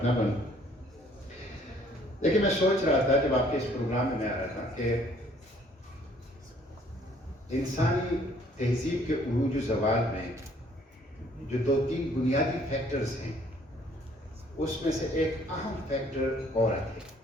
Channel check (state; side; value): normal; both; correlation 0.60